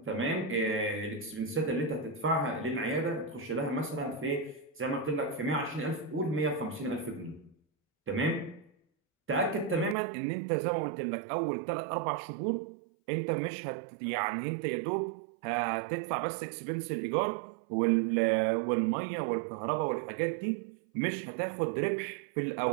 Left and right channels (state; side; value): drops out; left; at 10.0 s